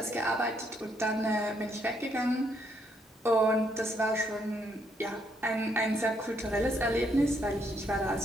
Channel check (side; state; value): both; normal; correlation 0.73